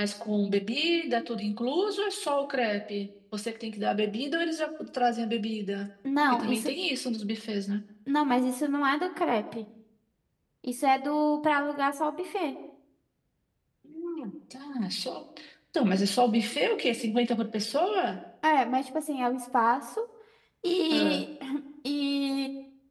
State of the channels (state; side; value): identical; both; correlation 1.00